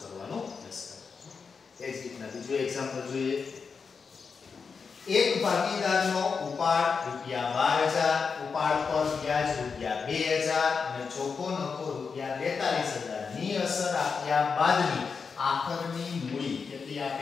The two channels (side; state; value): right; quieter; 5.4 dB